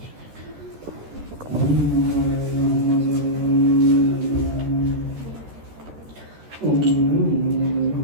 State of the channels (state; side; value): late; left; 13 ms